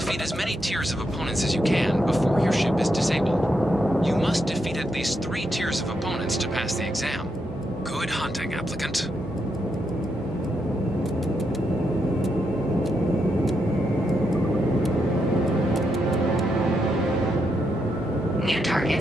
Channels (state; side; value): noise; right; hum, 14 dB below the sound